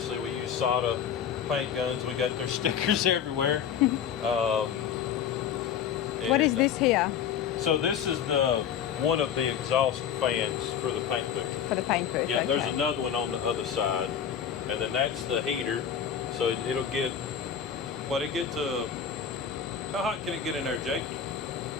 we use Sada paint guns. We got their stickers everywhere. What is this here? So this is one of the exhaust fans for the paint booth. For the paint booth? Yeah, okay. there's another one on the other side, and then that's the heater. So it'll get. It get to? How hot can it get in there, Jake?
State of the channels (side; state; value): right; quieter; 8.3 dB